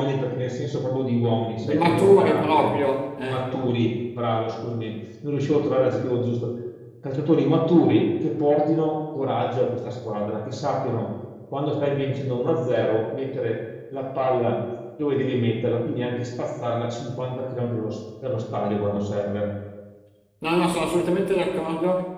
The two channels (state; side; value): identical; both; correlation 1.00